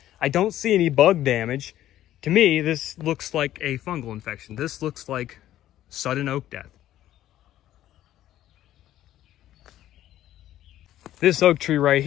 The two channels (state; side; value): quieter; right; 12.9 dB